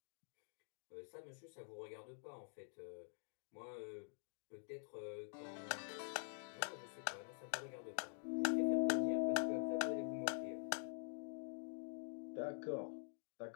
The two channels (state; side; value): silent; right; digital silence